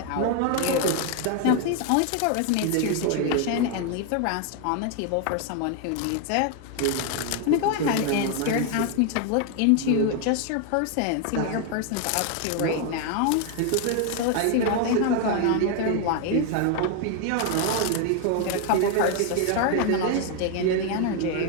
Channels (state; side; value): different; both; correlation 0.01